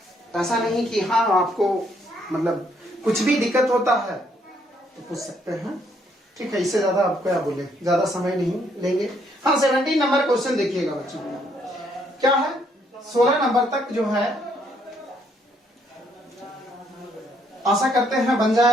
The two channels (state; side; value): normal; both; correlation 0.70